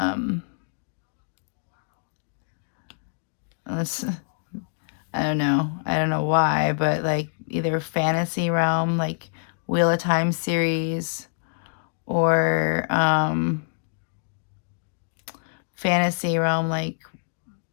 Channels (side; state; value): right; silent; digital silence